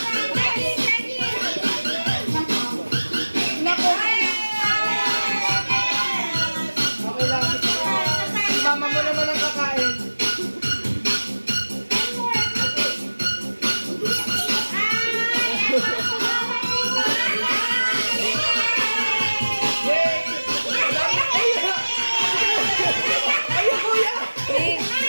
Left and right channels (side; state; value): both; inverted; correlation -1.00